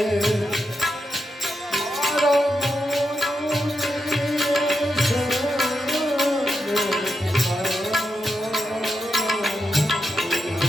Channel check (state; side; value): normal; both; correlation 0.86